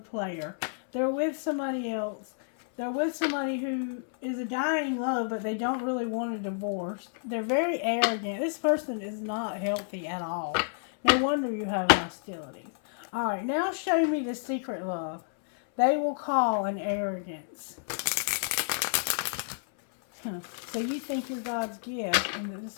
They're with somebody else. They're with somebody who is a dying love, but they don't really want a divorce. They're very arrogant. This person is not healthy at all. No wonder you have hostilities. All right, now show me the secret love. They will call an arrogance. So you think you're God's gift and that this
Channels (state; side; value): silent; right; 58 dB below the other